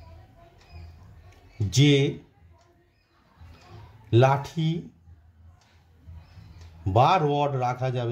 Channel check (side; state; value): both; identical; correlation 1.00